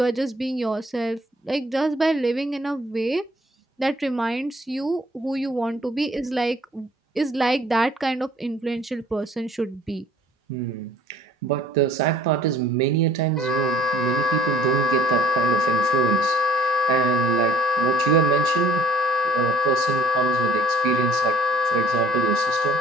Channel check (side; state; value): both; normal; correlation 0.55